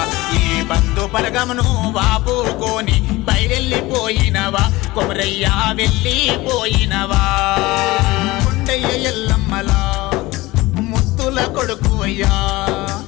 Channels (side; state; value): right; quieter; 20.1 dB